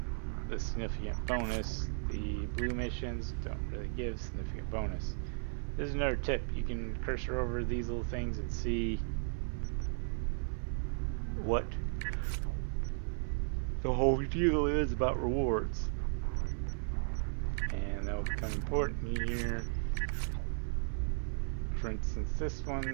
the significant bonus. The blue missions don't really give significant bonus. This is another tip. You can cursor over these little things and see what the whole deal is about rewards. And that will become important here. For instance, this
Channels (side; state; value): left; silent; 54 dB below the other